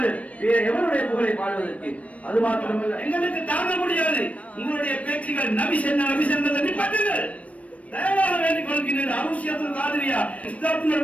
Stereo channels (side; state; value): right; late; 0.066 ms